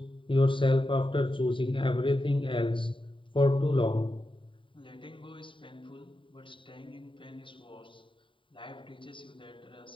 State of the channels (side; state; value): right; late; 0.25 ms